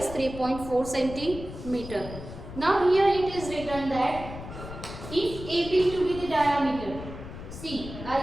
3.4 centimeter. Now here it is written that if AB to be the diameter, see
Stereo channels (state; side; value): noise; left; rumble, 11 dB below the sound